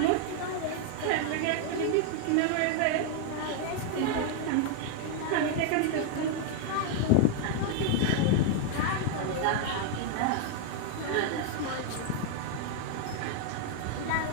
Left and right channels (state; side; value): different; both; correlation 0.00